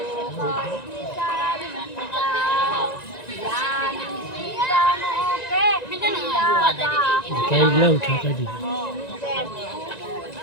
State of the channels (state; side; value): late; right; 1.9 ms